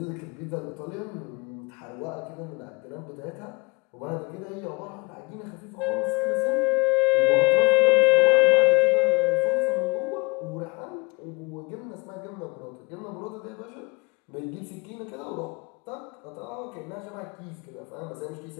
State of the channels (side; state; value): right; quieter; 27.2 dB